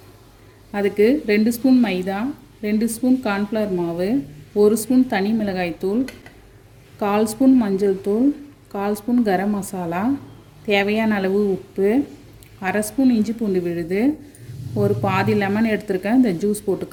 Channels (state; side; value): identical; both; correlation 1.00